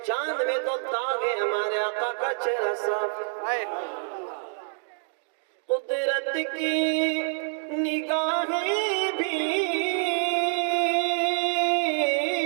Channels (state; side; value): silent; left; digital silence